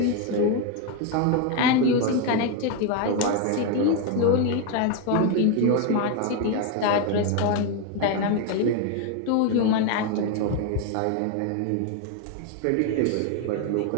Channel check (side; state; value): both; different; correlation 0.01